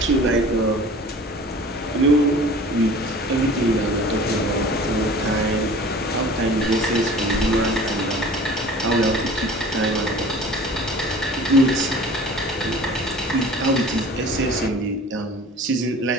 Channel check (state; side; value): normal; both; correlation 0.44